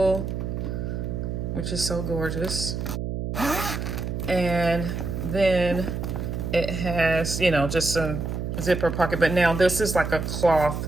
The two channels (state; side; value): noise; right; hum, 3 dB below the sound